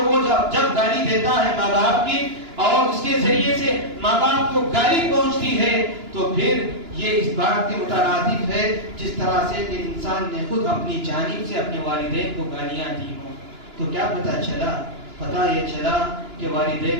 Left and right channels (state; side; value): late; left; 2.9 ms